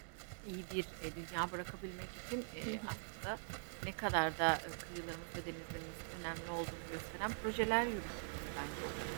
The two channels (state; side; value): silent; left; digital silence